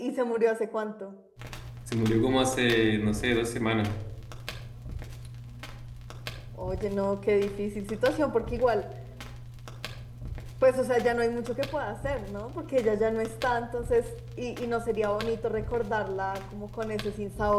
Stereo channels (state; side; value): identical; both; correlation 1.00